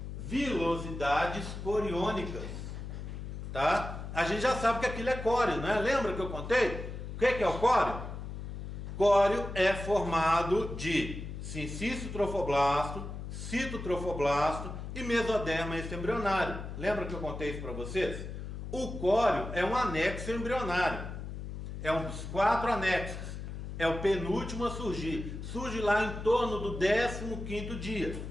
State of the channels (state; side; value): noise; left; hum, 8 dB below the sound